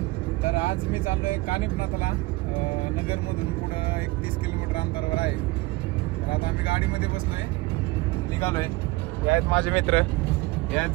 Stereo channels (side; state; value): left; quieter; 21.7 dB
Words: तर आज मी चाललोय कानिफनाथला, नगर मधून पुढे 31 किलोमीटर अंतरावर आहे। तर आता आम्ही गाडीमध्ये बसलोय, निघालोय। हे आहेत माझे मित्र, हे